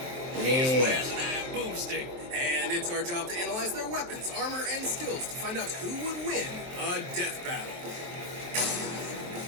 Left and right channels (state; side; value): late; left; 23 ms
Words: Yeah. Where's an iron boomstick? And it's our job to analyze their weapons, armor, and skills to find out who would win a death battle.